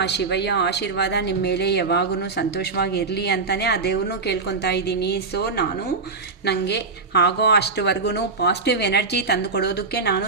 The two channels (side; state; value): left; quieter; 4.3 dB